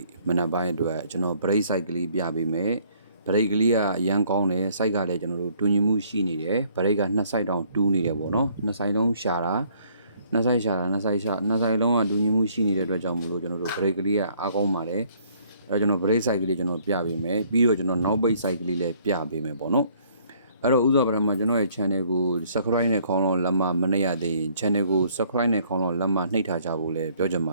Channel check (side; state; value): both; inverted; correlation -0.63